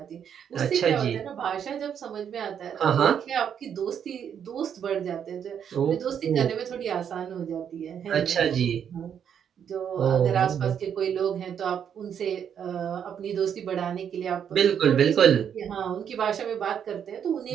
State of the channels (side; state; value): left; quieter; 8.3 dB